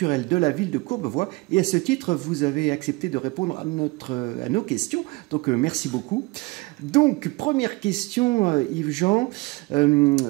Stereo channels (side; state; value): left; quieter; 24.5 dB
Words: de la ville de Courbevoie. Et à ce titre, vous avez accepté de répondre à nos questions. Donc merci beaucoup. Donc première question, Yves-Jean. La